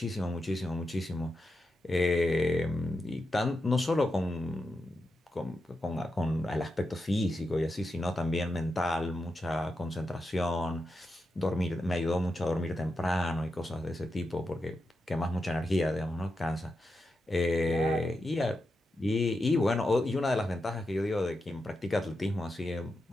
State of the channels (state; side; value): normal; both; correlation 0.88